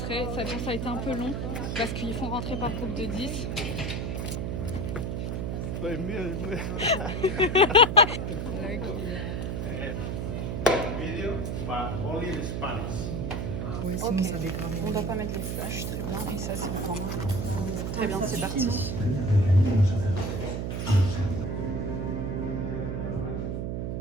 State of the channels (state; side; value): noise; right; hum, 2 dB below the sound